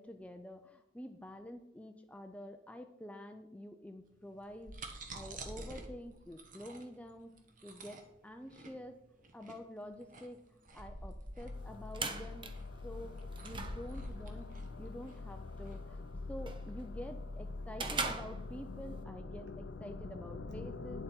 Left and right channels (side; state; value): both; normal; correlation 0.56